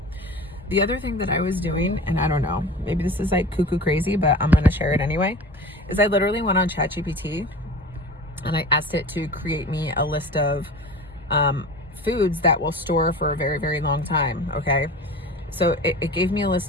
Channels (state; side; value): normal; both; correlation 0.36